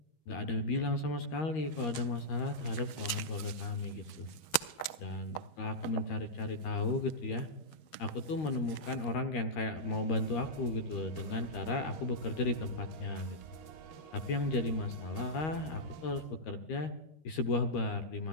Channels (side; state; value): right; late; 12 ms